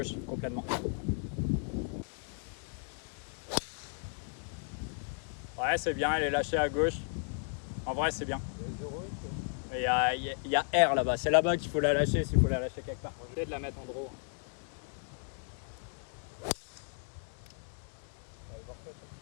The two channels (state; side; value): silent; right; 55 dB below the other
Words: complètement. Ouais, c'est bien, elle est lâchée à gauche. En vrai, c'est bien. Il y a R là-bas, c'est là-bas qu'il faut la lâcher s'il faut la lâcher quelque part. Je vais essayer de la mettre en draw.